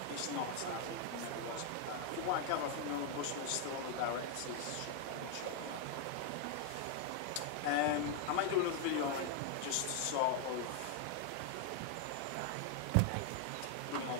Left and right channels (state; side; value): different; both; correlation 0.00